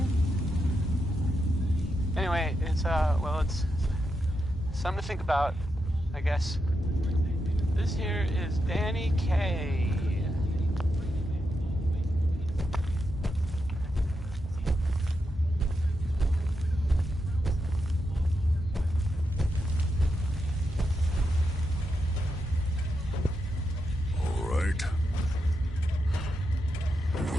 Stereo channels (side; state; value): both; normal; correlation 0.85